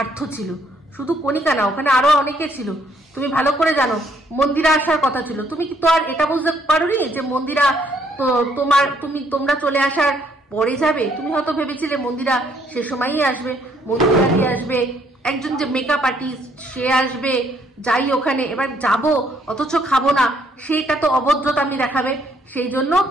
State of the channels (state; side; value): normal; both; correlation 0.68